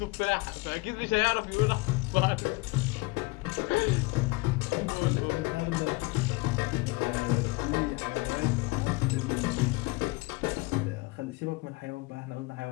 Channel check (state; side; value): quieter; right; 24.8 dB